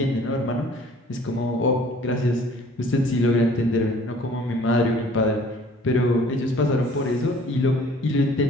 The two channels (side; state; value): both; normal; correlation 0.53